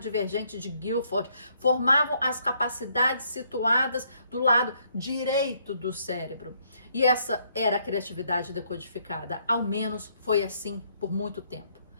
de Guilford, formavam as capacidades situadas do lado direito do cérebro. E essa era a criatividade decodificada. Ao menos foi assim por muito tempo.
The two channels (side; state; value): both; inverted; correlation -0.70